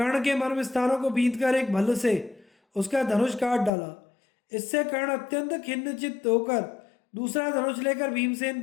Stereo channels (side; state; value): right; drops out; at 3.7 s